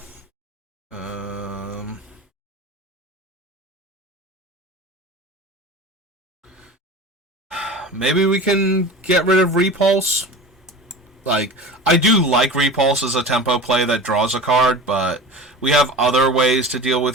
Maybe we can get rid of Repulse. Like, I do like Repulse as a tempo play that draws a card, but we have other ways to deal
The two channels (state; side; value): normal; both; correlation 0.35